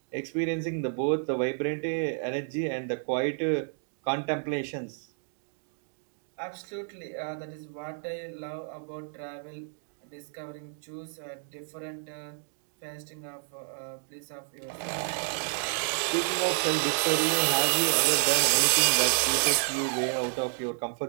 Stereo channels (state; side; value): silent; left; digital silence